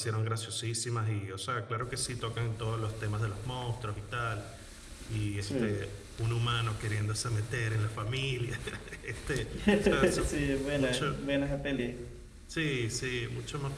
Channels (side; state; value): both; identical; correlation 1.00